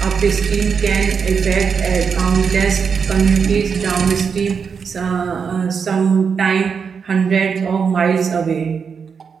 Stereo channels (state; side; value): quieter; left; 6.2 dB